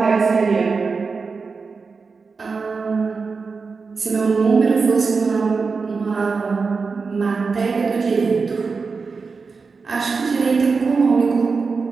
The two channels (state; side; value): quieter; left; 4.7 dB